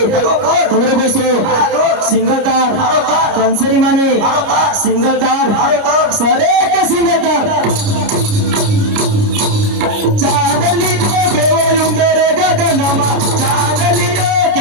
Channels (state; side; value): late; left; 29 ms